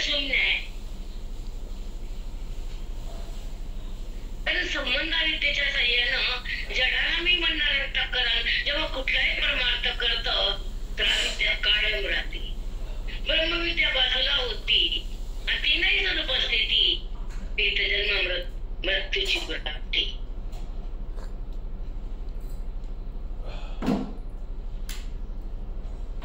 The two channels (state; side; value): identical; both; correlation 1.00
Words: आहे. कारण संबंधाविद्येच्या साह्यानं जडाला मी म्हणणार अंतःकरण जेव्हा कुठलाही परमार्थ करत तर अविद्या कायम राहते. ब्रह्मविद्या बाजूला होती आणि ती नाही जर उपस्थिती ते जन्म मृत्यूची प्राप्ती.